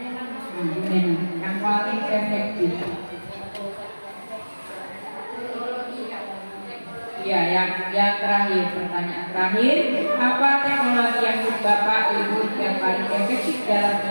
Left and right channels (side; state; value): both; inverted; correlation -1.00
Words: Bu Nena, yang paling efektif. Ya, yang terakhir, pertanyaan terakhir, apa teknologi yang menurut Bapak Ibu yang paling efektif dalam